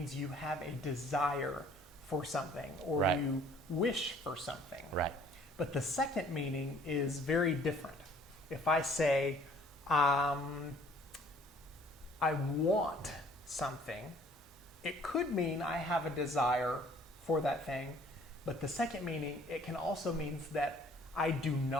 you have a desire for something, or Right. you wish for something. Right. But the second meaning is very different. If I say, I want something, it could mean I have a desire for that thing, but the second meaning, it can also mean that I do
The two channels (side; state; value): both; normal; correlation 0.56